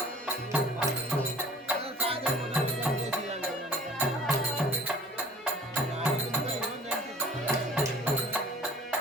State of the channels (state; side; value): normal; both; correlation 0.48